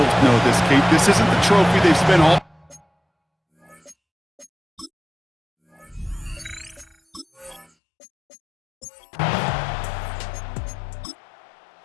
know this, Kate. This isn't the trophy they've spent all...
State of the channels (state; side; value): drops out; right; at 7.7 s